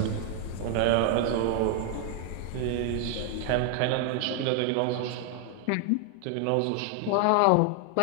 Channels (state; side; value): different; both; correlation 0.00